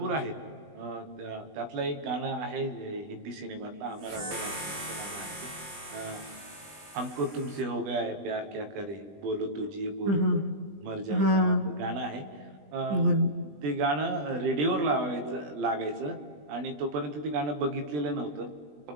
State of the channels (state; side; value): late; left; 20 ms